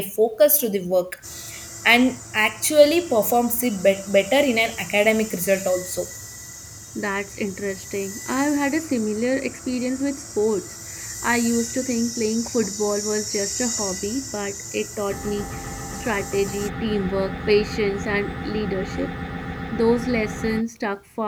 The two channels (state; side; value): identical; both; correlation 1.00